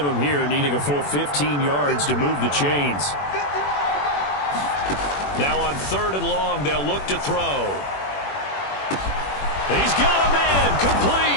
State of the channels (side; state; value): right; late; 21 ms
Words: him here, needing a full 15 yards to move the chains. Now on 3rd and long, they'll look to throw. He's got a man,